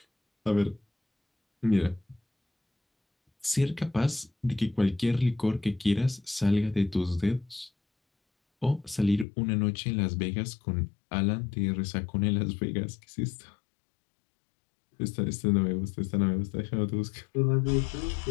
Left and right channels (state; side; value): drops out; right; at 9.2 s